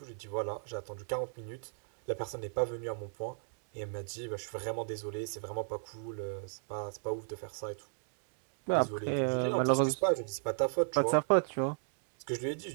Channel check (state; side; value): silent; left; 54 dB below the other